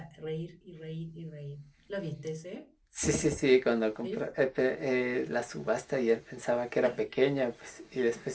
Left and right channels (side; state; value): both; identical; correlation 1.00